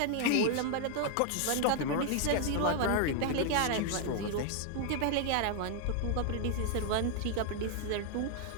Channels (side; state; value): both; different; correlation 0.00